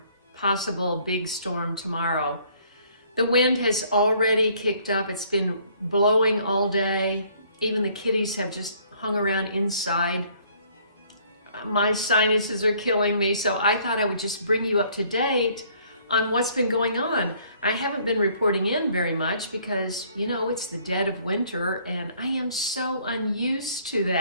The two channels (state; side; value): inverted; both; correlation -0.61